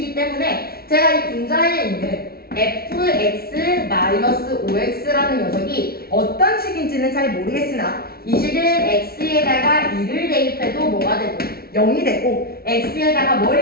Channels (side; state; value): right; late; 0.44 ms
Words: 때문에 제가 이 분자에 있는 fx-5x라는 녀석이 어떤 식인지는 잘 모르겠으나 이 식은 x에다가 2를 대입해도 뭐가 되고 0이 되고 x에다가